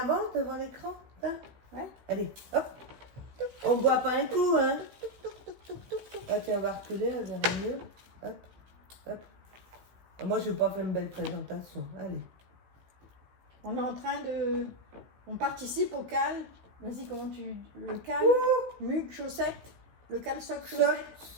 devant l'écran, hein? Ouais. Allez, hop. On boit pas un coup, hein? Ah tiens, on va reculer, on verra mieux. Hop, hop. Ah, moi, je n'ai pas fait une belle présentation. Allez. On est en train de... On participe au cal. Vas-y, comment tu... Le cal, mugue, chaussette. Le cal soc Soc,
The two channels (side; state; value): left; late; 16 ms